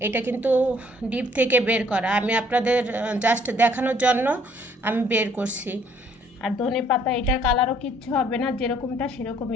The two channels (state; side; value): normal; both; correlation 0.63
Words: এটা কিন্তু ডিপ থেকে বের করা, আমি আপনাদের জাস্ট দেখানোর জন্য আমি বের করছি। আর ধনে পাতা, এটার কালারও কিচ্ছু হবে না, যেরকমটা